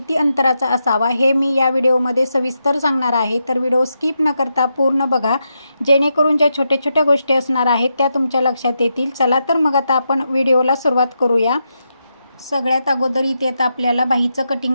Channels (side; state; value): both; inverted; correlation -0.85